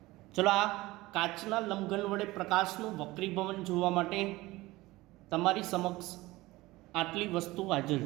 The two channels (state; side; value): quieter; left; 19.5 dB